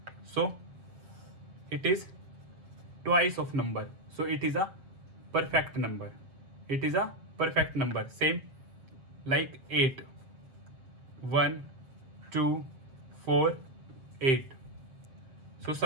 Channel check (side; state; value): left; late; 7.5 ms